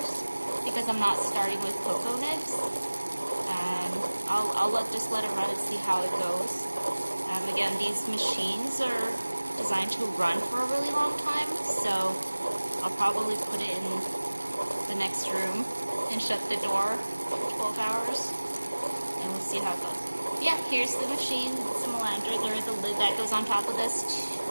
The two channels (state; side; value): inverted; both; correlation -1.00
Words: because I'm not starting with cocoa nibs. I'll just let it run and see how it goes. Again, these machines are designed to run for a really long time, so I'll probably put it in the next room and shut the door for 12 hours, and we'll see how it goes. Yeah, here's the machine. It's a Melanger. There is a lid that goes on top of this,